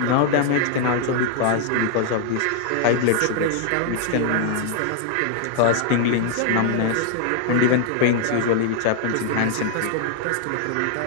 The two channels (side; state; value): both; different; correlation 0.00